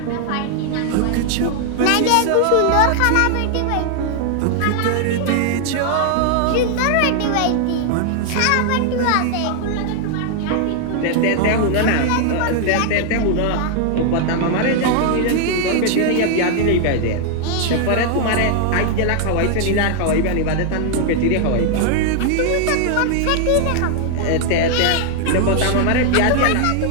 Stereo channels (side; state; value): both; different; correlation 0.00